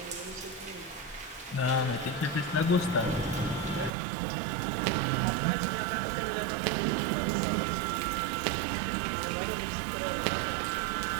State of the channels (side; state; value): left; drops out; at 3.9 s